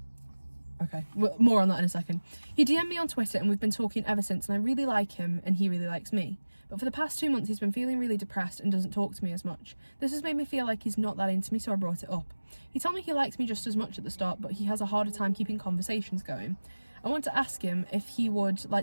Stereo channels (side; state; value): both; inverted; correlation -1.00